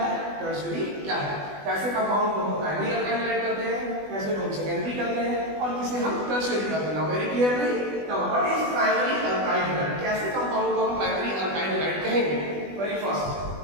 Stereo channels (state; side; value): late; left; 20 ms